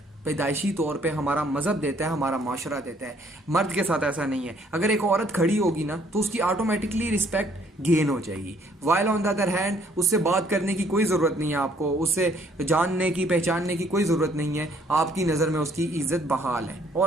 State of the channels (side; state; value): both; normal; correlation 0.63